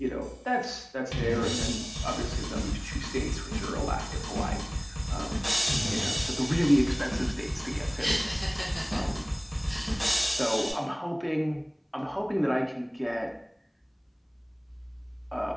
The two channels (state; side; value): identical; both; correlation 1.00